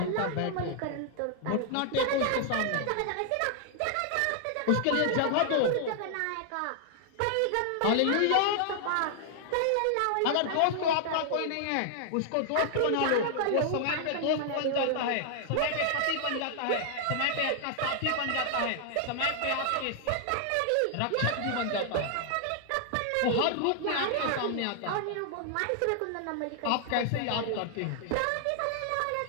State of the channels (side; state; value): both; different; correlation 0.00